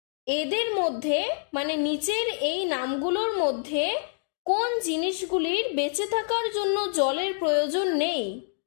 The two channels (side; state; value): right; silent; digital silence